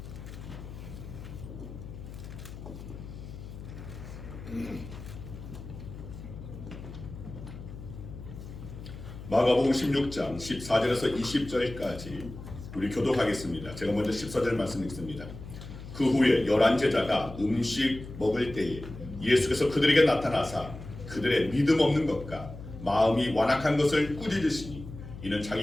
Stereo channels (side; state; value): left; noise; hum, 12 dB below the sound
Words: 마가복음 16장 14절에서 20절까지 우리 교독하겠습니다. 제가 먼저 14절 말씀 읽습니다. 그 후에 11 제자가 음식 먹을 때에 예수께서 그들에게 나타나사 그들의 믿음 없는 것과 마음이 완악한 것을 꾸짖으시니 이는